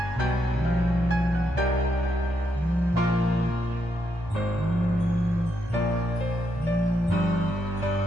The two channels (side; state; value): both; normal; correlation 0.79